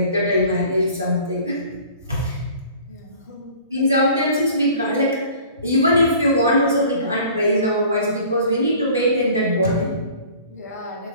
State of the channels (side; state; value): both; inverted; correlation -0.48